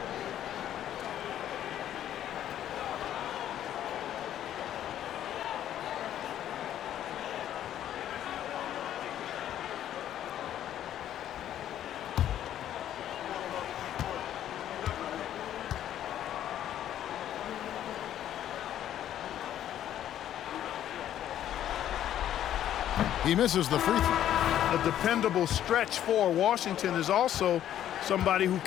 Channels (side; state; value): right; quieter; 11.3 dB